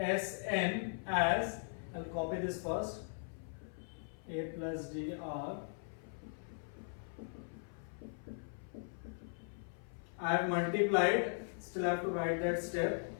as, I'll copy this first, A plus D R. I have multiplied, still have to write that step.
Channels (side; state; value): right; silent; 52 dB below the other